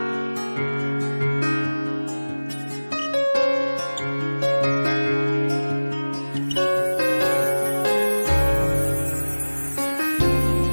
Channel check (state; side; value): inverted; both; correlation -1.00